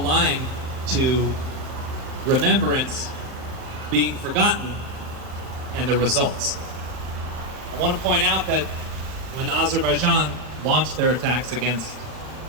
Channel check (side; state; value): left; late; 40 ms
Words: to remembrance being forgotten and the results. I want to point out that when Azerbaijan launched their attacks against